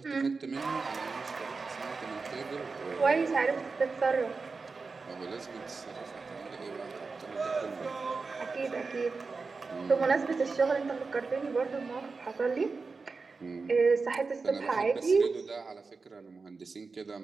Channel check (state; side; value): quieter; left; 4.4 dB